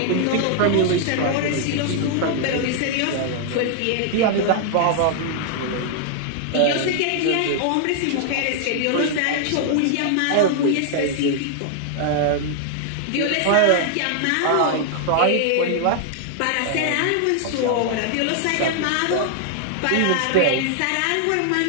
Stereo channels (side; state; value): both; different; correlation 0.00